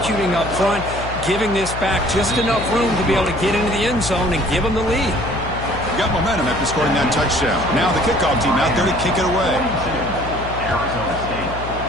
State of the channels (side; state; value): left; noise; hum, 9 dB below the sound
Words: up front, giving this back just enough room to be able to get into the end zone and give them the lead. Got momentum after scoring that touchdown. Now the kickoff team out there to kick it away. Arizona State,